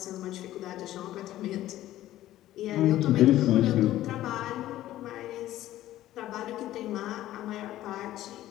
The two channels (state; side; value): quieter; right; 14.2 dB